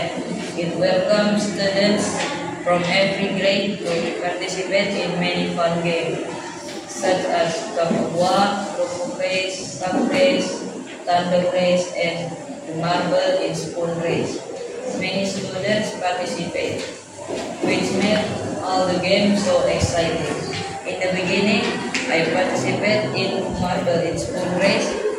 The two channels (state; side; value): identical; both; correlation 1.00